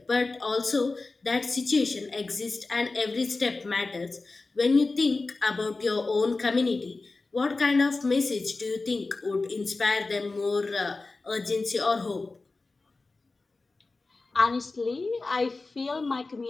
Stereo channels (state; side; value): quieter; right; 3.6 dB